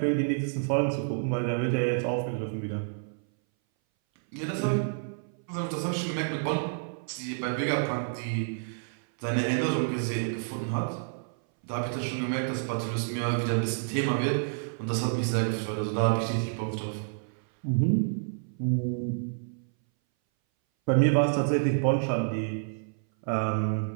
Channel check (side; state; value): left; silent; 59 dB below the other